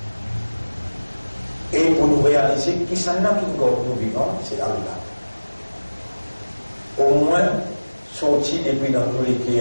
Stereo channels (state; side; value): inverted; both; correlation -1.00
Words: Et pour nous réaliser qui s'en a qui nous vivants, c'est Allah. Au moins, sorti depuis dans nous les